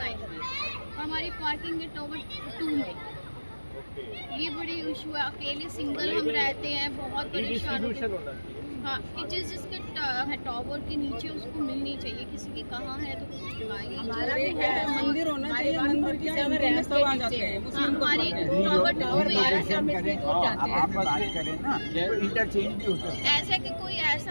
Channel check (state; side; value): inverted; both; correlation -1.00